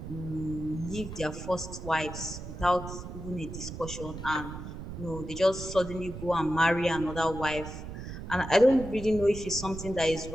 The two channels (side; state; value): right; noise; rumble, 9 dB below the sound